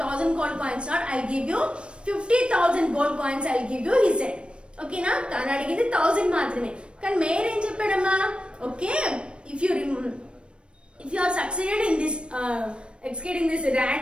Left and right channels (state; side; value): late; left; 0.057 ms